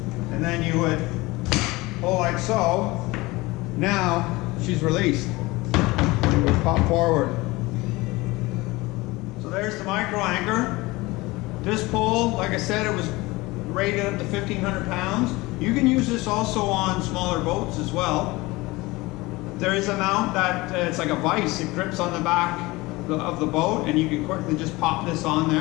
and then you would pull like so. Now she's released. You would pop forward. So there's the micro anchor. This pole, like I said, it was rated up to 1,500 pounds. You can use this also on smaller boats as well. There is a mount that it's like a vise. It grips on the back of the boat and you can quickly just pop this on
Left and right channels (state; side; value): quieter; right; 21.6 dB